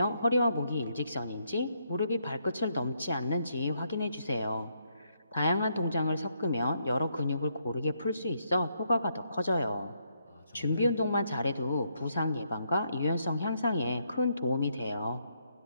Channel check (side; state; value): both; inverted; correlation -0.76